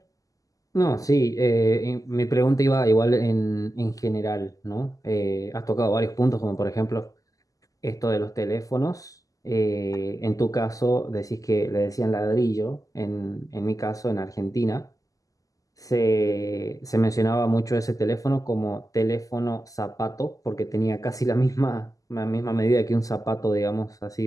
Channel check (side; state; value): right; late; 0.17 ms